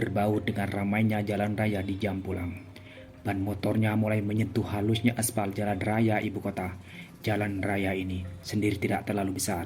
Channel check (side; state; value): both; identical; correlation 1.00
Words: dengan ramainya jalan raya di jam pulang. Ban motornya mulai menyentuh halusnya aspal jalan raya ibu kota. Jalan raya ini sendiri tidak terlalu